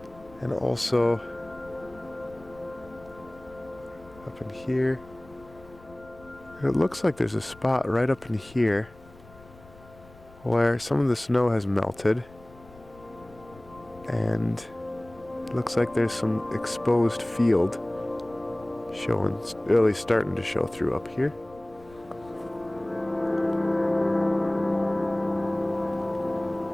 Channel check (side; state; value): left; noise; rumble, 23 dB below the sound